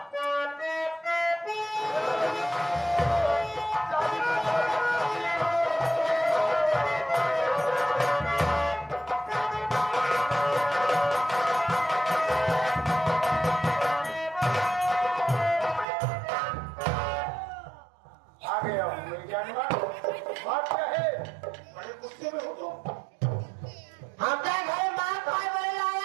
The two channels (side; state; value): left; drops out; at 15.9 s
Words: आ गया हूँ मेरी जान बात क्या है बड़े गुस्से में हो तो हम क्या घर मार खाए बड़े